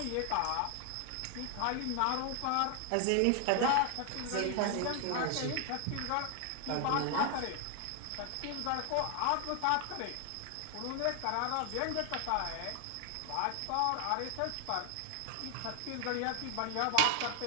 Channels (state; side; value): different; both; correlation 0.00